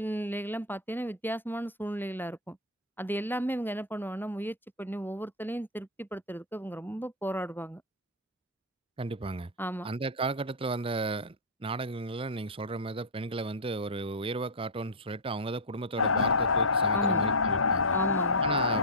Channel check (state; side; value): normal; both; correlation -0.08